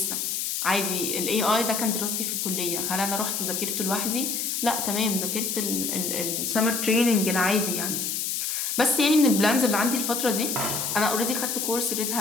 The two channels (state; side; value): noise; left; hiss, 1 dB below the sound